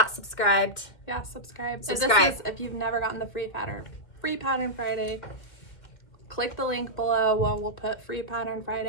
subscribed, subscribe. Subscribe. If you've never gotten the Free Pattern Friday, click the link below. We'll put Free Pattern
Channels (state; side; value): late; right; 2.1 ms